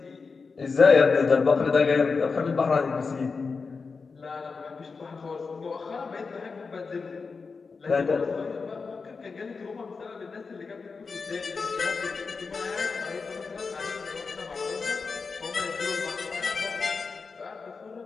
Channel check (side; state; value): right; quieter; 4.7 dB